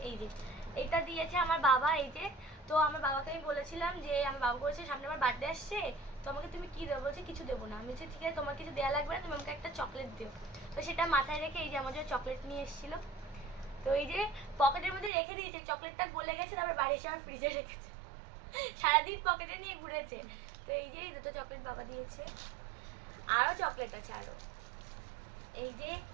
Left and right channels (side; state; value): left; drops out; at 15.1 s